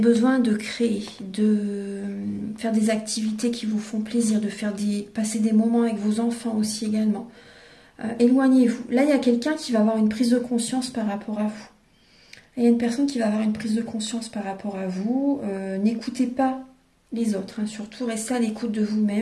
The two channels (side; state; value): both; identical; correlation 1.00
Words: de créer, de faire des activités qui vous font plaisir, de passer des moments avec vos enfants aussi également. Éloignez-vous. Là, il y a quelqu'un qui va avoir une prise de conscience par rapport à vous. Il y a une personne qui va avoir une prise de conscience par rapport à vous. N'écoutez pas les autres, hein. Surtout, restez à l'écoute de